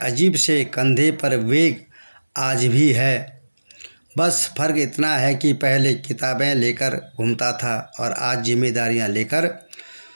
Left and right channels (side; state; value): both; inverted; correlation -1.00